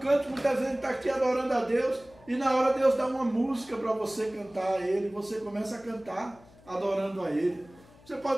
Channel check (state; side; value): noise; left; hum, 25 dB below the sound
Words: muitas vezes a gente está aqui adorando a Deus e na hora Deus dá uma música para você cantar a Ele, você começa a cantar adorando a Ele. Você